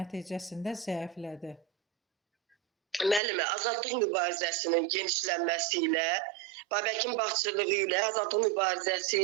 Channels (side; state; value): left; drops out; at 3.2 s